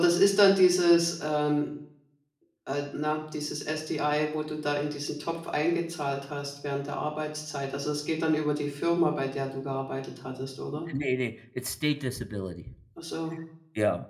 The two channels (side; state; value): both; identical; correlation 1.00